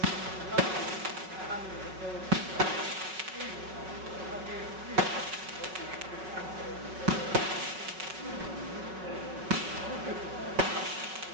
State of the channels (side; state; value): left; late; 5.4 ms